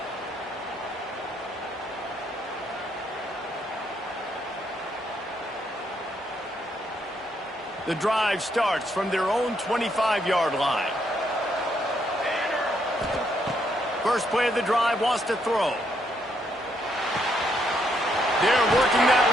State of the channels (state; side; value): normal; both; correlation 0.74